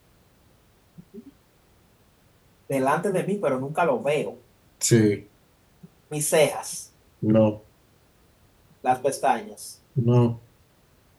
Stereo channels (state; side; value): identical; both; correlation 1.00